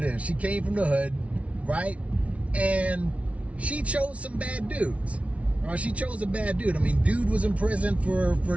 is. She came from the hood, right? And she chose some bad dudes. She chose a bad dude. I mean, dude was in prison for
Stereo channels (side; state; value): left; late; 0.064 ms